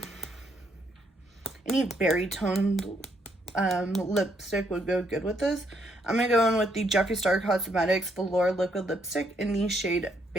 Any berry toned lipstick would go good with this. I'm gonna go in with the Jeffree Star Cosmetics Velour Liquid Lipstick in the shade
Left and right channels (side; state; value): both; normal; correlation 0.73